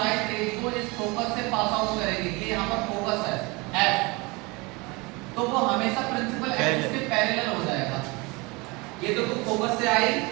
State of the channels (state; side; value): quieter; left; 26.0 dB